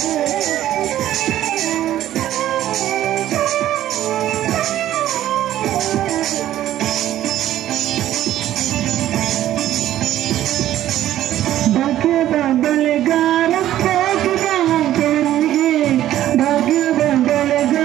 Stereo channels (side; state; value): left; quieter; 12.9 dB